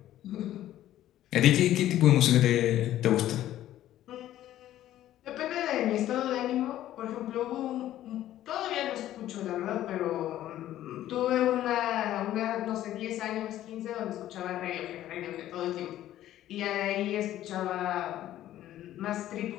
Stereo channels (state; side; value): quieter; right; 13.1 dB